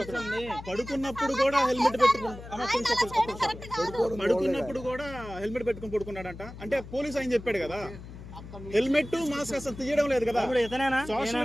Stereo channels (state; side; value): noise; left; hum, 14 dB below the sound